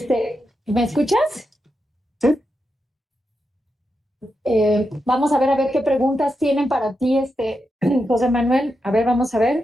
¿Me escuchas? Sí. Vamos a ver qué preguntas tienen para ti, José Manuel. A ver, vamos a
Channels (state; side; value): normal; both; correlation 0.86